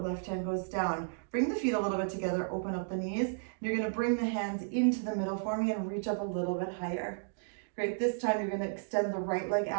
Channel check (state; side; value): silent; left; digital silence